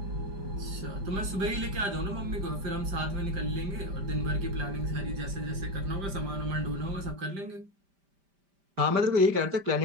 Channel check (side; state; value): left; late; 5.1 ms